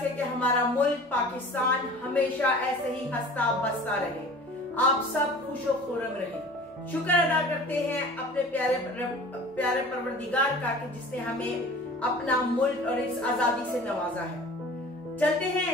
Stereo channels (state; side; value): normal; both; correlation 0.43